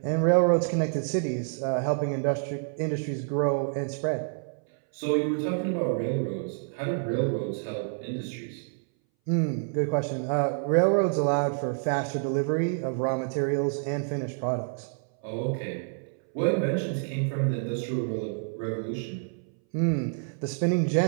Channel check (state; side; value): silent; left; 59 dB below the other